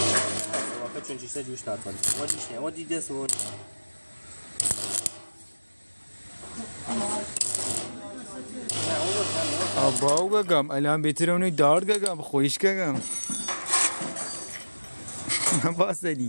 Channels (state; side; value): inverted; both; correlation -1.00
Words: واقعا چون چیزا جوش نکنه. ما دیش نه. ما دیده سون. آباو گم الان بهتره اونو دار گم خویش گم.